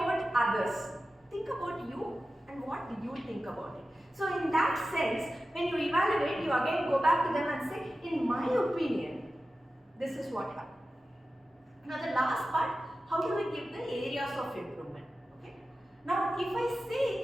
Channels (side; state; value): both; normal; correlation 0.94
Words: others. Think about you and what do you think about it. So in that sense, when you evaluate, you again go back to them and say, in my opinion, this is what happened. Now the last part, how do we give the areas of improvement? Okay. Now if I